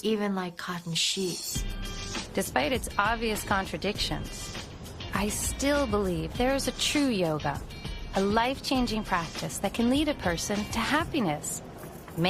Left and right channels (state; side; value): identical; both; correlation 1.00